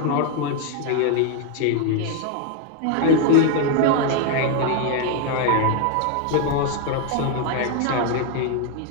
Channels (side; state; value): both; different; correlation 0.01